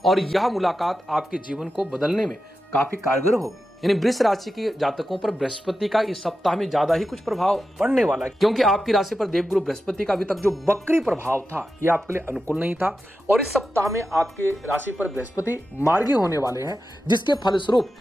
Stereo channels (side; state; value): both; normal; correlation 0.91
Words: और यह मुलाकात आपके जीवन को बदलने में काफी कारगर होगी। यानी वृष राशि के जातकों पर बृहस्पति का इस सप्ताह में ज्यादा ही कुछ प्रभाव पड़ने वाला है, क्योंकि आपकी राशि पर देवगुरु बृहस्पति का अभी तक जो वक्री प्रभाव था यह आपके लिए अनुकूल नहीं था और इस सप्ताह में आपके राशि पर बृहस्पति मार्गी होने वाले हैं, जिसके फलस्वरूप